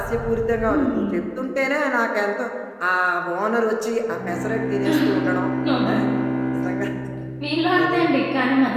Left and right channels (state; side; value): identical; both; correlation 1.00